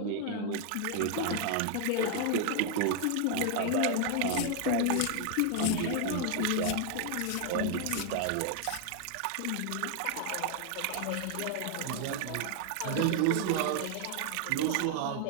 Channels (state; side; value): different; both; correlation 0.00